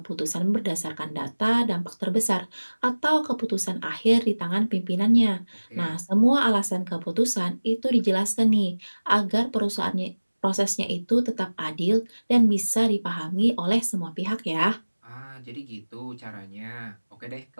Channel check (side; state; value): both; inverted; correlation -1.00